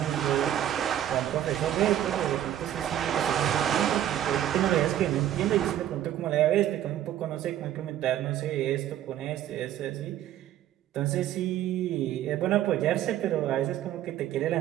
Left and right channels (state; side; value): quieter; left; 11.7 dB